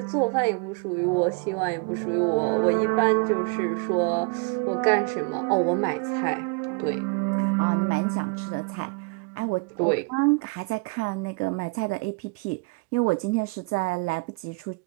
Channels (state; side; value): quieter; left; 30.4 dB